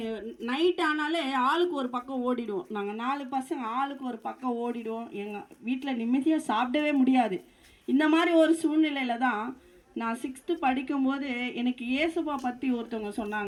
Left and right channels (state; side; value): identical; both; correlation 1.00